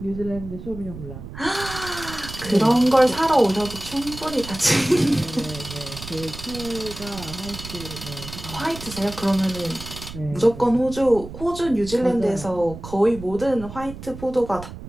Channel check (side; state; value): right; noise; rumble, 12 dB below the sound